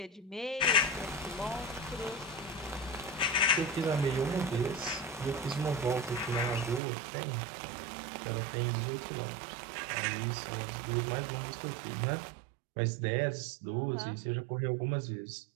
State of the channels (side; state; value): left; drops out; at 6.8 s